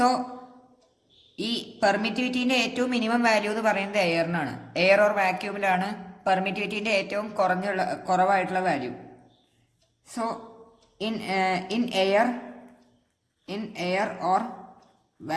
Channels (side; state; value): both; identical; correlation 1.00